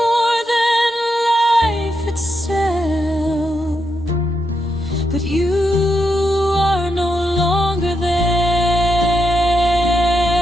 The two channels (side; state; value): both; normal; correlation 0.83